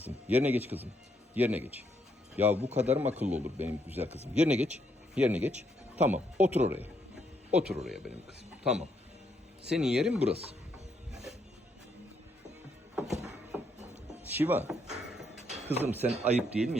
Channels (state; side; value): normal; both; correlation 0.74